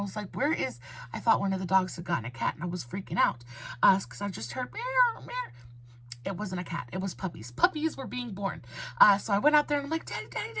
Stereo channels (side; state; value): both; identical; correlation 1.00